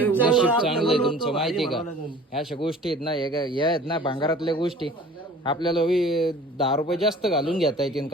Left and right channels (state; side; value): normal; both; correlation 0.46